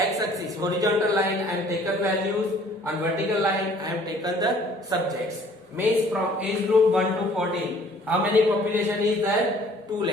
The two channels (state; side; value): normal; both; correlation 0.56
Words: horizontal line, I am taken values. On vertical line, I am taken the subjects. Means from age group 1 to 14. How many population is there? 2